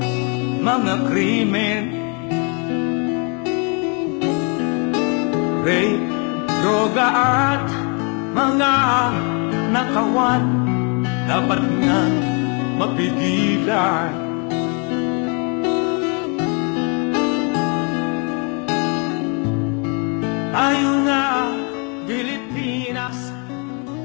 mga krimen, rape, droga at mga nakawan, dapat nga mapigilan. Tayo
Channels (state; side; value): quieter; right; 35.3 dB